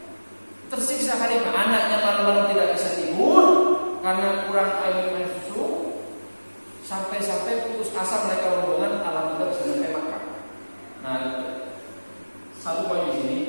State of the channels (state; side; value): inverted; both; correlation -1.00